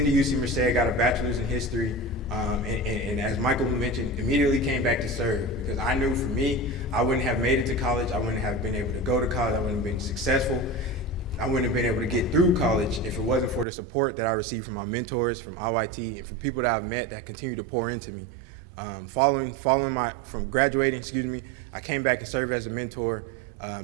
UC Merced, got a bachelor's in history, and as Michael mentioned, immediately came back to serve because I knew for me, I wouldn't have made it to college, I wouldn't have been able to go to college, I wouldn't have been successful, I wouldn't have been able to get through college if it wasn't for the support that I received from my mentors, from IYT, and from people that I've met that continue to pour into me. From graduating, I came back to serve as a mentor,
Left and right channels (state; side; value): drops out; left; at 13.7 s